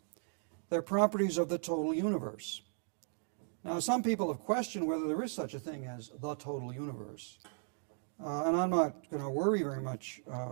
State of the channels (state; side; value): silent; left; 53 dB below the other